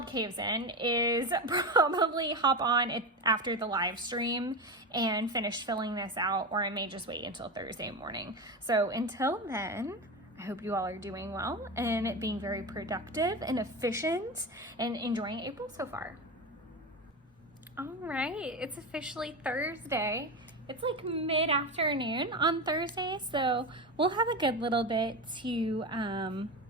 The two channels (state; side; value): normal; both; correlation 0.21